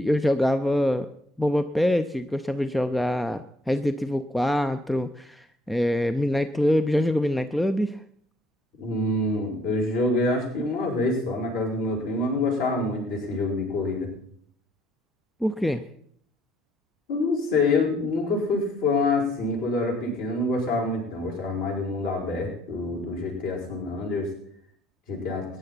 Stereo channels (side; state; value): both; normal; correlation 0.64